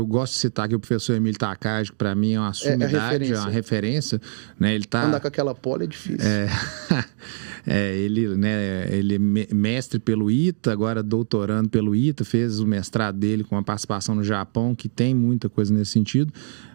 gosto de citar aqui o professor Emílio Takagi, que para mim é uma sumidade, é uma referência. Né? Ele andar com aquela pole é difícil. Ele é mestre pelo ITA, agora doutorando pelo ITA, fez o mestrado dele com uma participação no Japão, que tem muita coisa nesse sentido,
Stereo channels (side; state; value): left; silent; digital silence